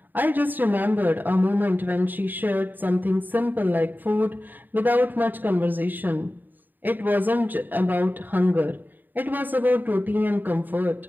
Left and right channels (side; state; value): left; late; 0.089 ms